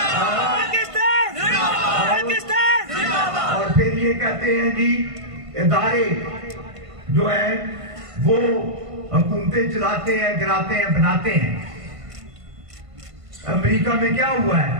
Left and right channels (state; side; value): late; left; 1.5 ms